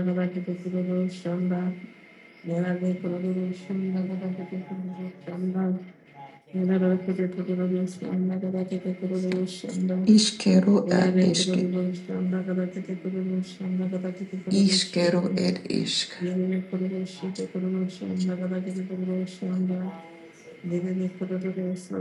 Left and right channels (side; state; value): both; identical; correlation 1.00